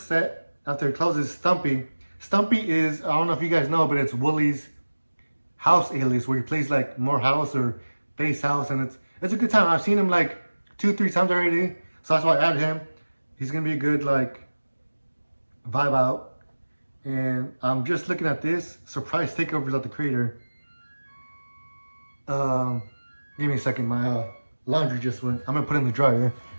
set after it closes, Stumpy. Stumpy is, I don't know if you guys know, but it's Wooly's house alias, where he plays like more house or bass house, and it's a good time. I've seen him like 2-3 times already, so that's why I added him. He's gonna be a good like vibe out. And I'm just looking at this surprise takeovers at the Creator. Give me a second, my laundry just went. I'm gonna put it in the dryer.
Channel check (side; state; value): both; inverted; correlation -1.00